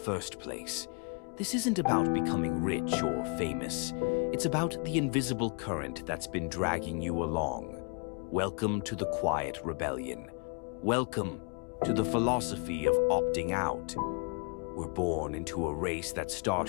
place. This isn't about becoming rich or famous. It's about the invisible current that's been dragging you along. Welcome to the quiet rebellion. Welcome to the philosophy of opting out. We're born into a race that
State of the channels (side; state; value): right; quieter; 36.1 dB